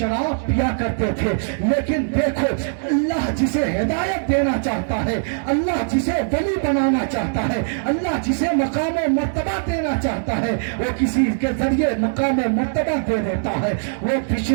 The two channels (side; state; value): left; silent; digital silence